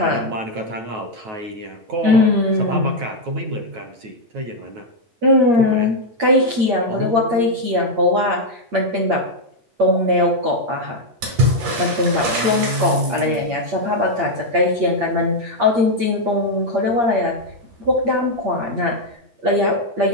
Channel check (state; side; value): late; left; 8.6 ms